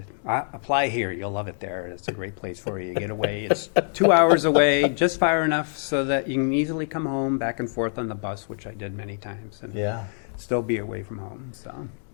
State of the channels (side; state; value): right; silent; digital silence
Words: apply here. You'll love it there. It's a great place for you. You get away. It's 2 hours away, just far enough so that you can easily come home back and forth on the bus, which I did many times, and Yeah. still be away from home. So,